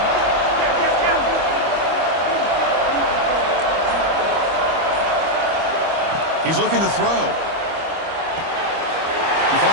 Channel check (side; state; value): left; late; 25 ms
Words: He's looking to throw. He